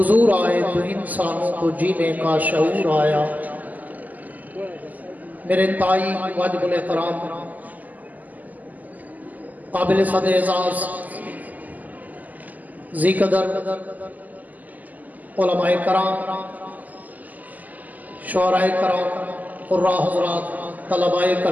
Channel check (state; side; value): late; left; 0.081 ms